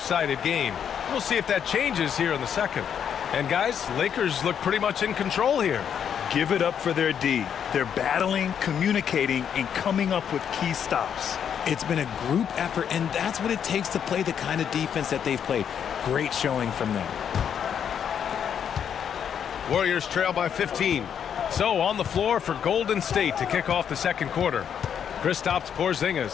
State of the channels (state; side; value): quieter; right; 8.3 dB